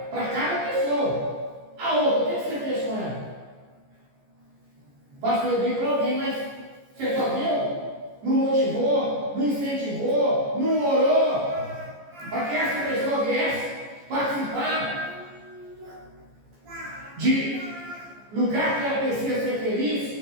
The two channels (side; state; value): left; late; 14 ms